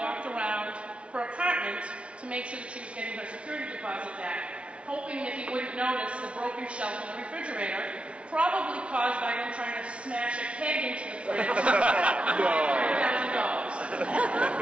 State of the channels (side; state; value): left; late; 0.060 ms